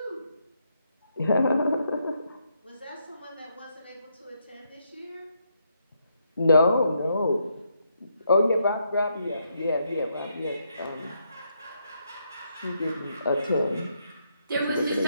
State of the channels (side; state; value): both; inverted; correlation -0.78